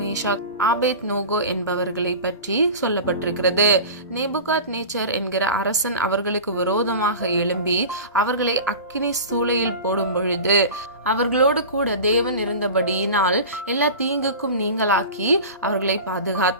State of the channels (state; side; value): inverted; both; correlation -0.33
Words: ஆபேத் நோகோ என்பவர்களை பற்றி சொல்லப்பட்டிருக்கிறது. நேபுகாத் நேச்சர் என்கிற அரசன் அவர்களுக்கு விரோதமாக எழும்பி அவர்களை அக்கினி சூளையில் போடும் பொழுது அவர்களோடு கூட தேவன் இருந்தபடியினால் எல்லா தீங்குக்கும் நீங்களாக்கி அவர்களை